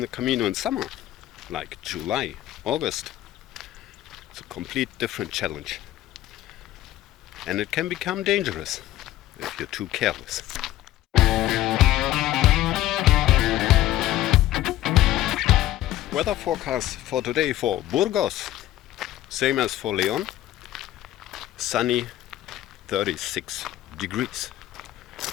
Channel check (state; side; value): quieter; right; 14.4 dB